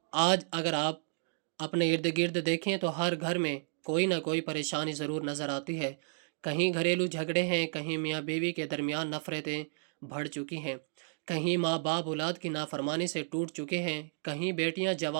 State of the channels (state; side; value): silent; left; digital silence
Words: آج اگر آپ اپنے ارد گرد دیکھیں تو ہر گھر میں کوئی نہ کوئی پریشانی ضرور نظر آتی ہے۔ کہیں گھریلو جھگڑے ہیں، کہیں میاں بیوی کے درمیان نفرتیں بڑھ چکی ہیں، کہیں ماں باپ اولاد کی نافرمانی سے ٹوٹ چکے ہیں، کہیں بیٹیاں